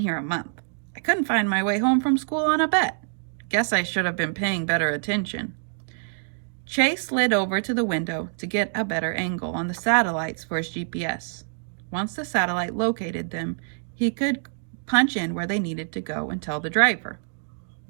a month. I couldn't find my way home from school on a bet. Guess I should have been paying better attention. Chase slid over to the window to get a better angle on the satellites for his GPS. Once the satellite located them, he could punch in where they needed to go and tell the driver.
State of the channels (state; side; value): silent; left; digital silence